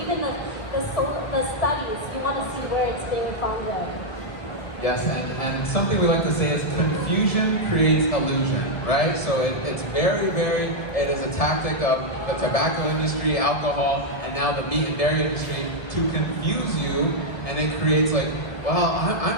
even the studies. You want to see where it's being founded. Yes, and something we like to say is confusion creates illusion, right? So it's it is a tactic of the tobacco industry, alcohol, and now the meat and dairy industry to confuse you, and it creates like, well,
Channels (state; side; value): late; right; 1.3 ms